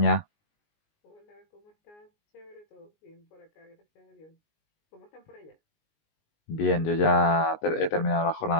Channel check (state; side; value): late; right; 19 ms